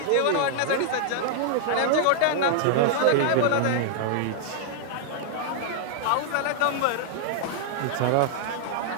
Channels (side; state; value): both; different; correlation -0.01